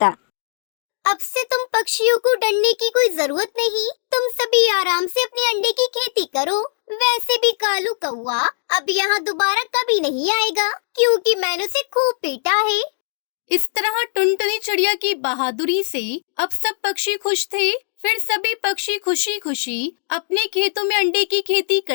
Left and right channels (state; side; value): silent; right; digital silence